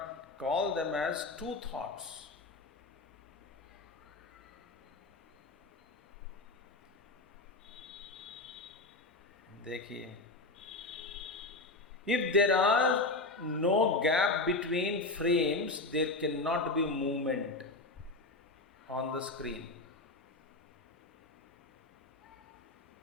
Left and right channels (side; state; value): right; quieter; 3.2 dB